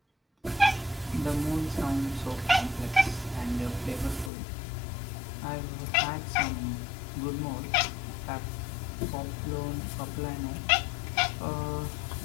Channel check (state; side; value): drops out; right; at 4.3 s